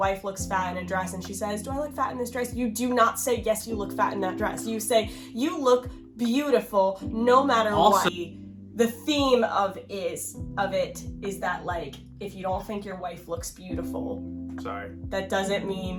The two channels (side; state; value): both; identical; correlation 1.00